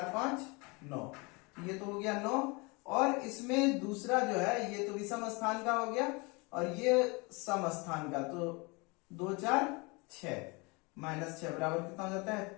5, 9। ये तो हो गया 9, और इसमें दूसरा जो है, ये तो विषम स्थान का हो गया और ये सम स्थान का, तो 2, 4, 6 माइनस 6 बराबर कितना हो जाता है,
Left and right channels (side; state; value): right; quieter; 28.1 dB